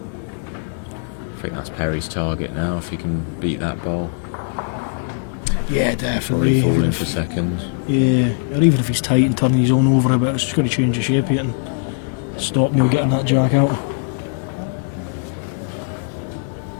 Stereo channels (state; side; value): silent; right; 64 dB below the other